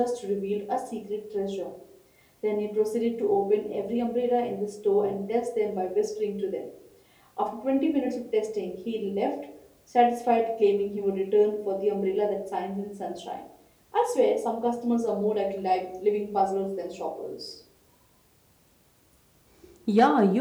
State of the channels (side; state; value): both; identical; correlation 1.00